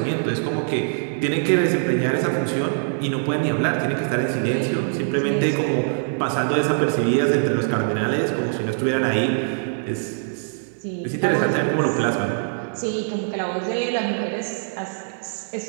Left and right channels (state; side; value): silent; left; digital silence